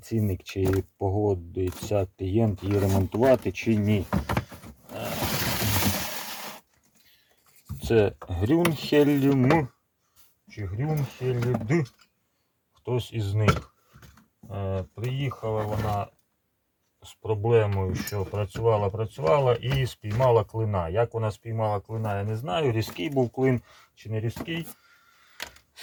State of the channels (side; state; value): both; identical; correlation 1.00